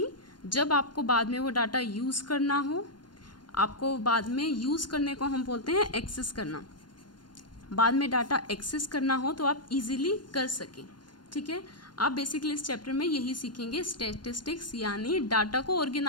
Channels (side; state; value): right; late; 0.71 ms